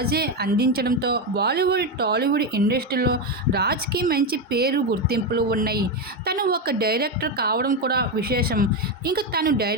అందించడంతో బాలీవుడ్, టాలీవుడ్ ఇండస్ట్రీలో రాజ్‌కి మంచి పేరు, గుర్తింపులు ఉన్నాయి. తను ఒక డైరెక్టర్ కావడం కూడా విశేషం. ఇంక తను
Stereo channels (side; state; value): both; normal; correlation 0.10